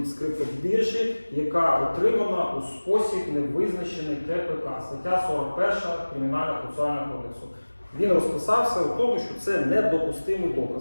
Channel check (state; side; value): inverted; both; correlation -1.00